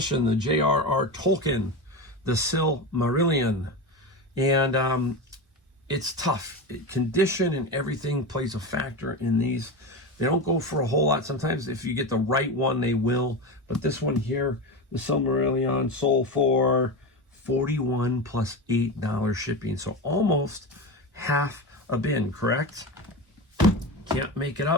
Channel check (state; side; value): normal; both; correlation 0.22